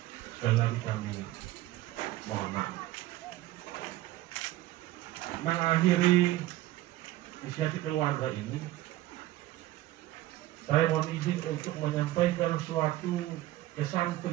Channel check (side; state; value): left; quieter; 15.9 dB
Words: sekali lagi kami mohon maaf. Mengakhiri inisiatif keluarga ini, saya mohon izin untuk menyampaikan suatu kesan